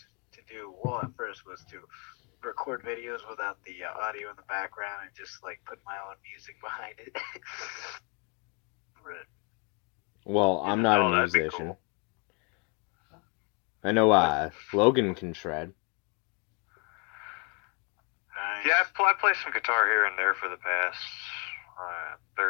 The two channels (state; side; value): quieter; right; 34.4 dB